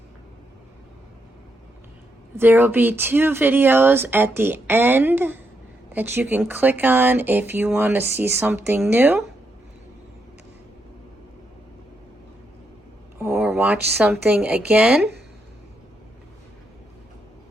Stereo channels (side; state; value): both; normal; correlation 0.80